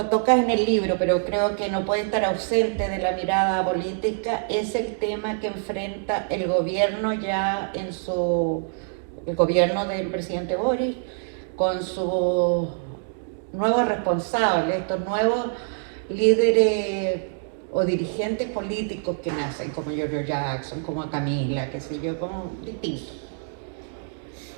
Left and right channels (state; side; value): silent; left; digital silence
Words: tocas en el libro, pero creo que no puede estar ausente de la mirada política, es el tema que enfrenta el gobierno ya el gobierno del presidente Boric, con sus nuevos responsables, estos nuevos líderes o dirigentes políticos que nacen, como Giorgio Jackson, como Camila, qué sé yo, como distintos.